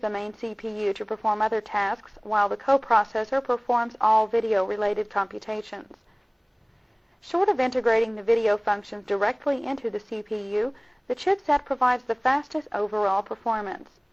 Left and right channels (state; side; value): identical; both; correlation 1.00